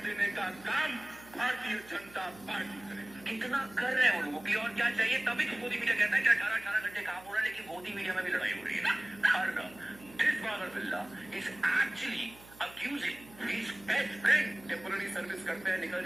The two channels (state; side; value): noise; right; hum, 21 dB below the sound